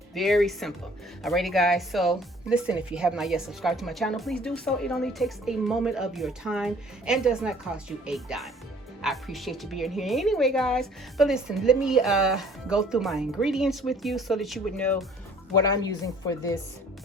Very simple. Alrighty, guys. So, listen, if you have not yet subscribed to my channel, please do so. It only takes a moment of your time and does not cost you a dime. I appreciate you being here anyway, guys. But listen, let me go through my ingredients with you so that you would know what I'm using for this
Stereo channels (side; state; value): both; normal; correlation 0.55